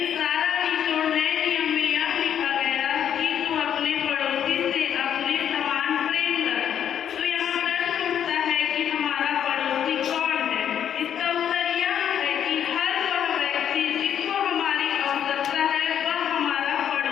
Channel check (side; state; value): right; quieter; 9.2 dB